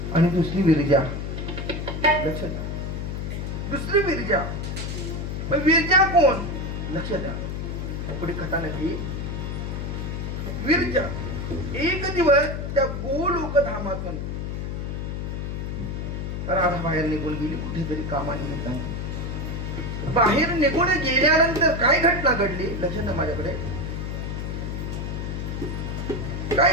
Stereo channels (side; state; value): left; noise; hum, 4 dB below the sound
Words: आणि दुसरी विरजा. लक्षात द्या, दुसरी विरजा. पण विरजा कोण? लक्षात द्या, पुढे कथानक येईल. विरजा एक दिवस त्या गोलोक धामातून राधा बाहेर निघून गेली कुठेतरी कामानिमित्ताने. बाहेर निघून गेल्यानंतर काय घटना घडली? लक्षात माझ्याकडे काय